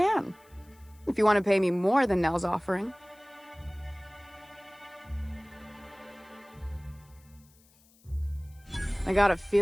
If you want to pay me more than Nell's offering. I got a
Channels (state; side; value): noise; left; hiss, 30 dB below the sound